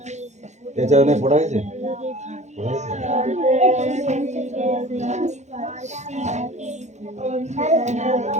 এছাড়া পড়া হয়েছে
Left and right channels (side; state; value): left; late; 0.33 ms